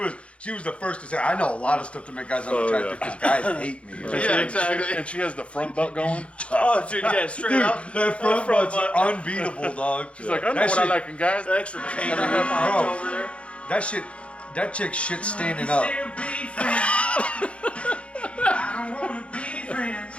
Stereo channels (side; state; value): right; late; 0.061 ms